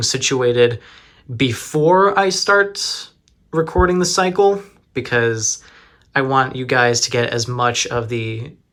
situated before I start recording the cycle, because I want you guys to get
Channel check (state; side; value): identical; both; correlation 1.00